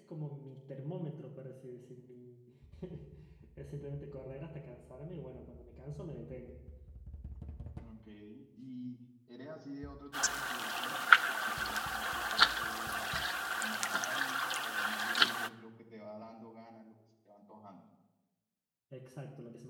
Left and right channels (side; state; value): both; identical; correlation 1.00